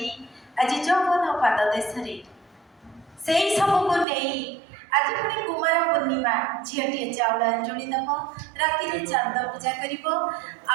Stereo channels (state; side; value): drops out; left; at 4.0 s